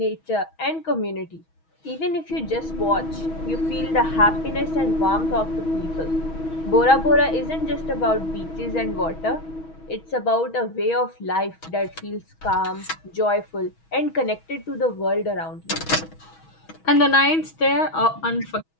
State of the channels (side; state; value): right; late; 6.2 ms